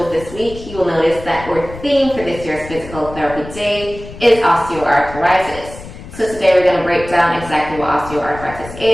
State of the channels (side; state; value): left; noise; rumble, 14 dB below the sound